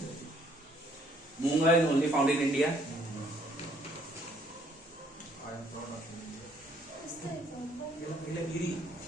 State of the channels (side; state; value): both; normal; correlation 0.64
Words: मूंगा is only found in India.